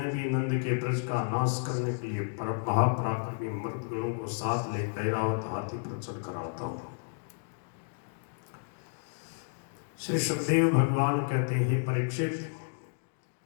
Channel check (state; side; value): silent; right; digital silence